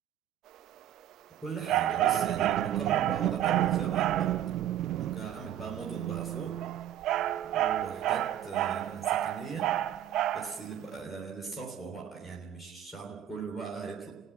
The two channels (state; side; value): quieter; left; 10.9 dB